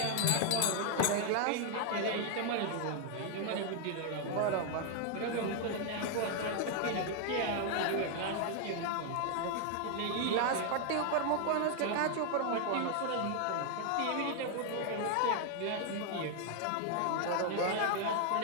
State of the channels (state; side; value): different; both; correlation 0.00